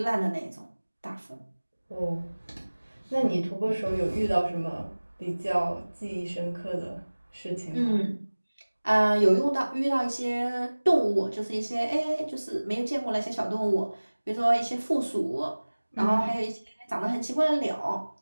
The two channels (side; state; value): both; inverted; correlation -1.00